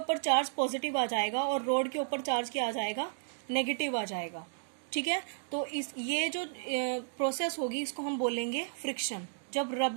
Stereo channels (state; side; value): silent; left; digital silence